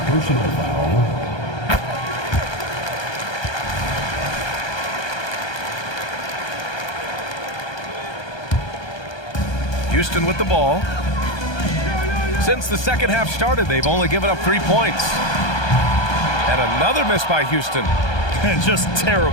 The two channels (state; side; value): late; right; 1.2 ms